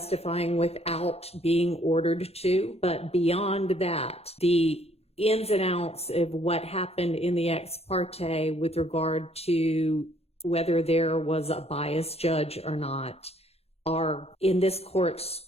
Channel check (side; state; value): right; late; 0.29 ms